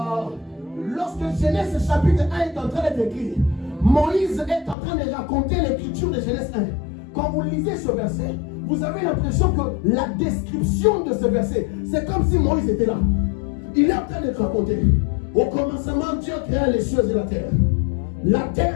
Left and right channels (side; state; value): right; drops out; at 4.8 s